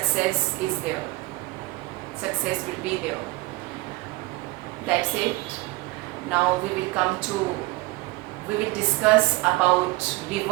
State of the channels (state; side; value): quieter; left; 21.3 dB